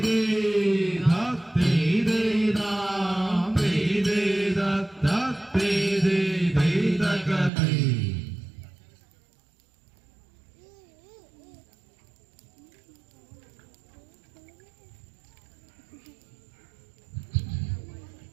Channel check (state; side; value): drops out; left; at 7.5 s